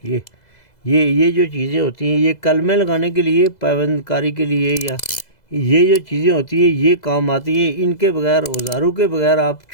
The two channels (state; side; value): late; right; 2.0 ms